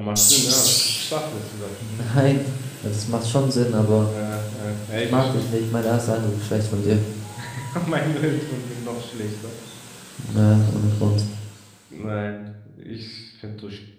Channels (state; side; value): identical; both; correlation 1.00